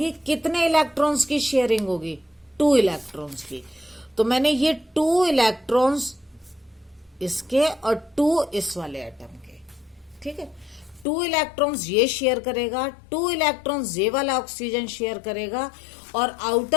कितने इलेक्ट्रॉन्स की शेयरिंग होगी? 2 इलेक्ट्रॉन्स की। तो मैंने ये 2 इलेक्ट्रॉन्स इसके और 2 इस वाले एटम के, ठीक है। 2 इलेक्ट्रॉन्स ये शेयर करेगा, 2 इलेक्ट्रॉन्स ये वाला ऑक्सीजन शेयर करेगा। और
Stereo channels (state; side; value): drops out; right; at 11.1 s